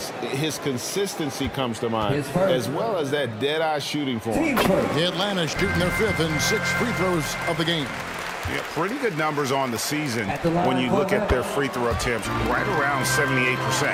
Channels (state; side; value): identical; both; correlation 1.00